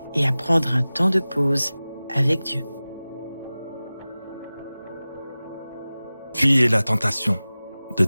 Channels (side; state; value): both; inverted; correlation -0.97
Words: et à prendre un temps de pause avec Dieu. Fuyez la tentation de